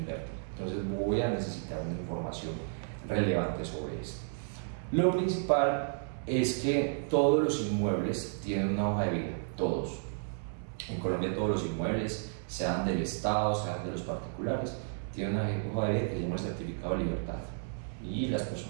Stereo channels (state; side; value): silent; left; 56 dB below the other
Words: Entonces voy a necesitar una información relevante sobre esto. Lo principal es que todos los inmuebles tienen una hoja de vida, todos. En Colombia todos los inmuebles, sean del Estado, sean de los particulares, tienen una hoja de vida que se llama el certificado de libertad y las